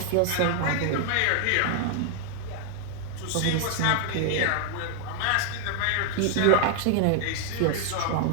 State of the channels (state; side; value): different; both; correlation 0.00